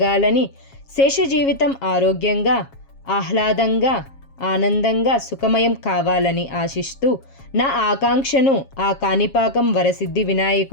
శేష జీవితం ఆరోగ్యంగా, ఆహ్లాదంగా, ఆనందంగా సుఖమయం కావాలని ఆశిస్తూ నా ఆకాంక్షను ఆ కాణిపాకం వరసిద్ధి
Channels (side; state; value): right; late; 7.4 ms